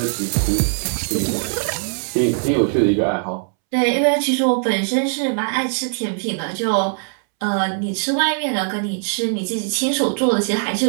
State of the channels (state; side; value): silent; left; 65 dB below the other